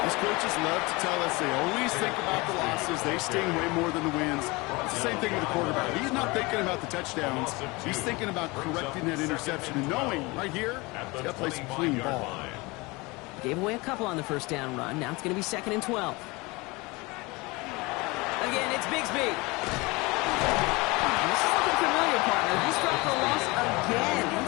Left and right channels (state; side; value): quieter; right; 24.4 dB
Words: These coaches love to tell us they always think about the losses. They sting way more than the wins. It's the same thing with the quarterback. He's not thinking about the touchdowns. He's thinking about correcting that interception and knowing right here, he's got to play some clean ball. Gave away a couple on the first down run. Now it's going to be 2nd and 12. Again, it's Bigsby. This is looking familiar, partner. He's dropped for a loss again.